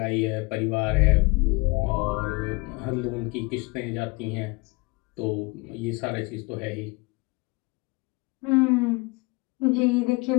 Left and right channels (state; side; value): quieter; right; 26.8 dB